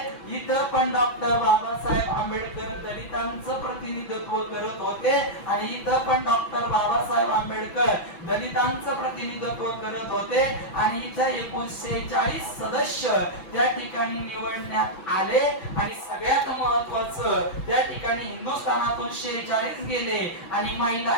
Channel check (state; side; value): late; right; 6.0 ms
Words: इथं पण डॉक्टर बाबासाहेब आंबेडकर दलितांचं प्रतिनिधित्व करत होते आणि इथं पण डॉक्टर बाबासाहेब आंबेडकर दलितांचं प्रतिनिधित्व करत होते. आणि इथे 1940 सदस्य त्या ठिकाणी निवडण्यात आले. आणि सगळ्यात महत्वाचं, त्या ठिकाणी हिंदुस्थानातून 46 गेले आणि महिला